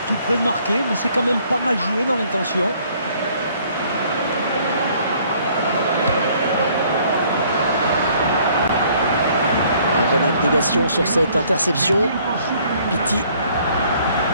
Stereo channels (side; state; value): both; inverted; correlation -0.61